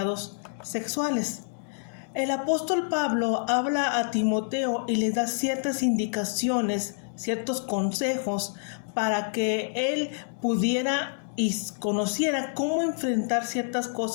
sexuales. El apóstol Pablo habla a Timoteo y le da ciertas indicaciones, ciertos consejos para que él pudiera y conociera cómo enfrentar ciertas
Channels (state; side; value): silent; right; digital silence